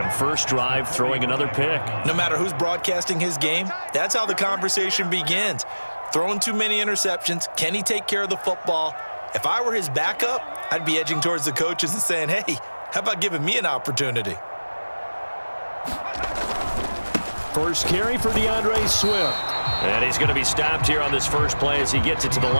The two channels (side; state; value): both; inverted; correlation -1.00